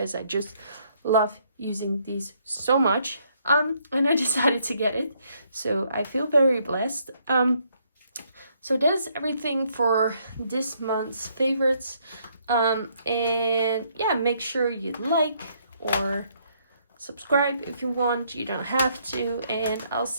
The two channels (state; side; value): inverted; both; correlation -0.70